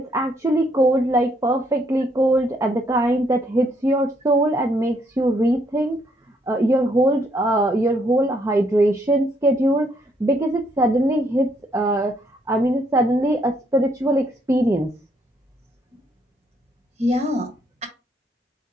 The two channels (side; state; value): both; normal; correlation 0.71